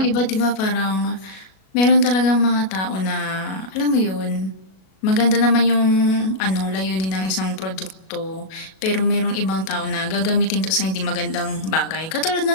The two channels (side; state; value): right; late; 37 ms